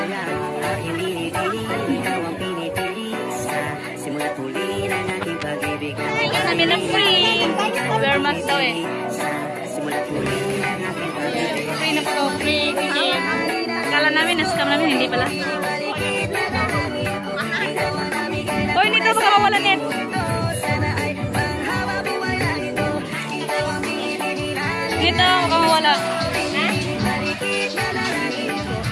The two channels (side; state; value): both; identical; correlation 1.00